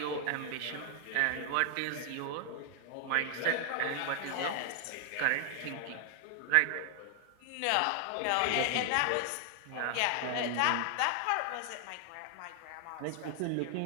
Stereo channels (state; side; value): different; both; correlation 0.00